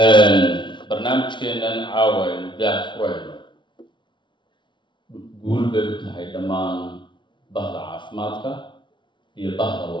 barnaamijkeennan caawa aynu daah furayno guul bay u tahay dhammaan bahda caafimaadka iyo bahda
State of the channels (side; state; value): right; late; 0.23 ms